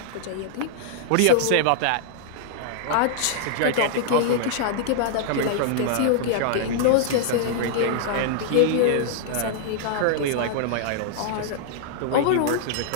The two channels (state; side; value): different; both; correlation -0.01